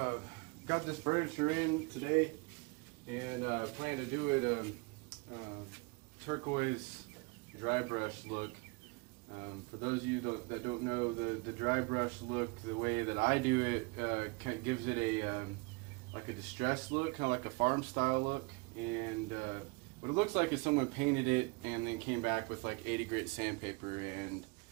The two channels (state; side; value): quieter; left; 28.6 dB